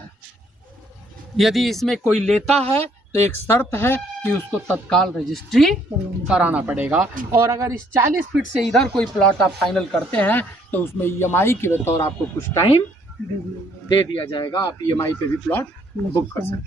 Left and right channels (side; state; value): both; normal; correlation 0.65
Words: यदि इसमें कोई लेता है तो एक शर्त है कि उसको तत्काल रजिस्ट्री कराना पड़ेगा, और अगर इस 40 फीट से इधर कोई प्लॉट आप फाइनल करते हैं तो उसमें EMI के बतौर आपको कुछ टाइम दे दिया जाएगा, आप EMI पे भी प्लॉट बुक कर सकते